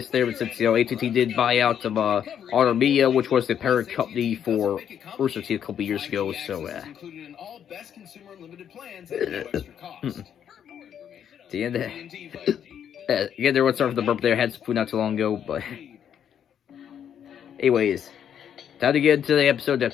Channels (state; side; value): quieter; right; 9.0 dB